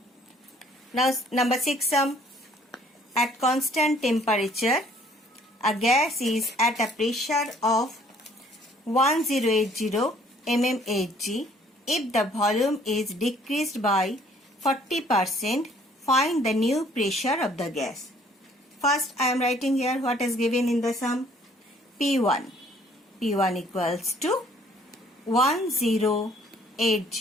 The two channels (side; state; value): both; normal; correlation 0.59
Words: Now number 6 sum. At constant temperature, a gas is at a pressure of 1080 mmHg. If the volume is decreased by 40%, find the new pressure of the gas. First, I am writing here what is given in the sum. P1 equals to